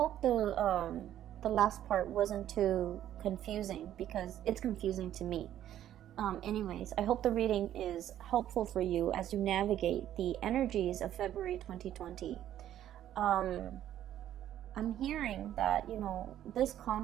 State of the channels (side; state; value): left; quieter; 11.6 dB